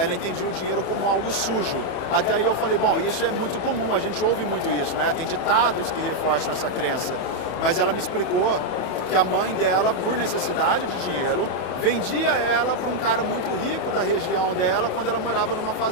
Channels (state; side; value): late; right; 31 ms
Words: entendia o dinheiro como algo sujo. Até aí eu falei, bom, isso é muito comum, a gente ouve muito isso, né? Tem ditados que reforçam essa crença. Mas ela me explicou que a mãe dela, por necessidade de dinheiro, vendia ela para um cara muito rico da região dela quando ela morava numa